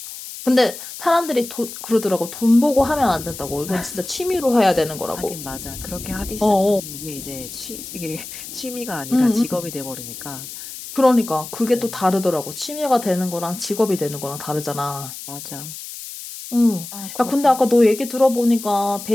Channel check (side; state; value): left; noise; hiss, 11 dB below the sound